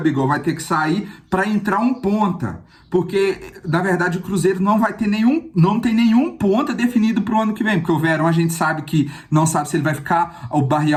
vai ter que sair para entrar um ponta. Porque, na verdade, o Cruzeiro não tem nenhum ponta definido para o ano que vem. Porque o Verón a gente sabe que não sabe se ele vai ficar, o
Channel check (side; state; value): both; identical; correlation 1.00